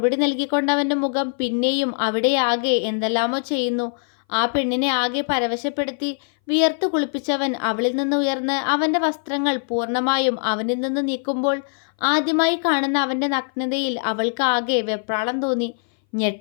നൽകിക്കൊണ്ട് അവൻ്റെ മുഖം പിന്നെയും അവിടെ ആകെ എന്തെല്ലാമോ ചെയ്യുന്നു. ആ പെണ്ണിനെ ആകെ പരവശപ്പെടുത്തി വിയർത്തു കുളിപ്പിച്ചവൻ അവളിൽ നിന്ന് ഉയർന്ന് അവൻ്റെ വസ്ത്രങ്ങൾ പൂർണ്ണമായും അവനിൽ നിന്ന് നീക്കുമ്പോൾ ആദ്യമായി കാണുന്ന അവൻ്റെ നഗ്നതയിൽ അവൾക്ക് ആകെ വെപ്രാളം തോന്നി,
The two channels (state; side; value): silent; right; 60 dB below the other